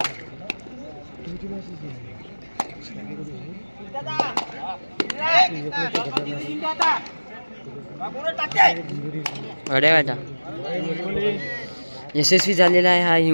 अरे बेटा यशस्वी झालेला आहे हा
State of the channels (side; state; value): both; inverted; correlation -1.00